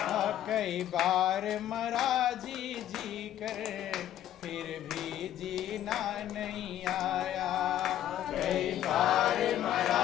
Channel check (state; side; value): quieter; right; 11.7 dB